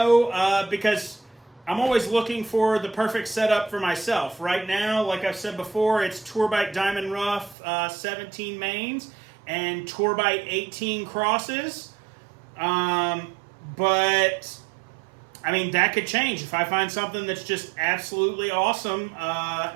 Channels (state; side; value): drops out; left; at 7.6 s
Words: because I'm always looking for the perfect setup for myself. Right now, like I've said before, it's Tourbite Diamond Rough 17 mains and Tourbite 18 crosses. But I mean, that could change. If I find something that's just absolutely awesome,